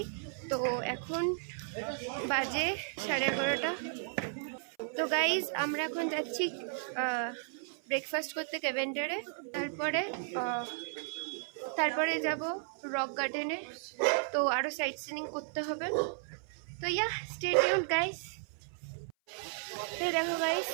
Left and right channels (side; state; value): left; silent; 55 dB below the other